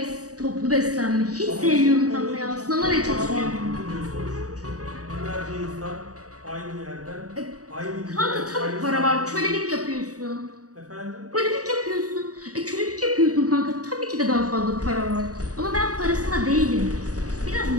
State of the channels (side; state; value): left; late; 0.67 ms